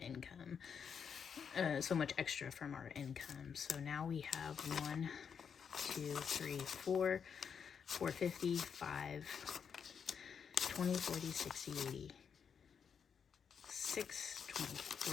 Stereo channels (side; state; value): right; quieter; 6.9 dB